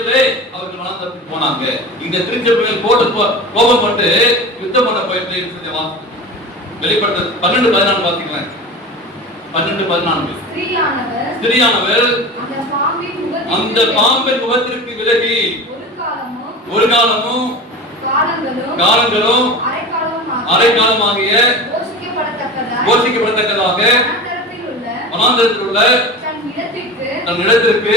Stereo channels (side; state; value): both; normal; correlation 0.31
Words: அவர்கள் வனாந்தரத்துக்கு போனாங்க. இந்த திருச்சபை மேல் கோபம் கொண்டு யுத்தம் பண்ண போயிட்டு வெளிப்படுத்தல் 12:14 வாசிக்கலாம். 12:14 ஸ்திரீயானவர் அந்த பாம்பின் அந்த பாம்பின் முகத்திற்கு விலகி ஒரு காலமும் காலங்களும் அரைக்காலமாகிய போஷிக்கப்படத்தக்கதாக வனாந்தரத்தில் உள்ள தன் இடத்திற்கு